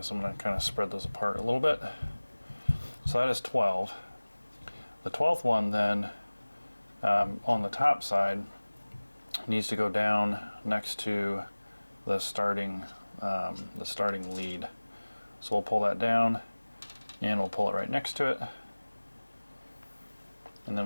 I'm going to kind of spread those apart a little bit. So that is 12. The 12th one then, on the top side, needs to go down next to the starting lead. So we'll pull that down, and we'll pull it right next to it. And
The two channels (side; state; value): both; inverted; correlation -1.00